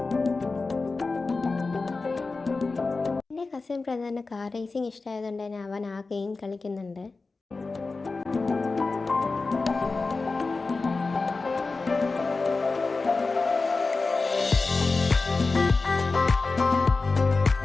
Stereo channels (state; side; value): quieter; right; 3.8 dB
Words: എൻ്റെ കസിൻ ബ്രദറിന് കാർ റേസിംഗ് ഇഷ്ടമായതുകൊണ്ട് തന്നെ അവൻ ആ ഗെയിം കളിക്കുന്നുണ്ട്.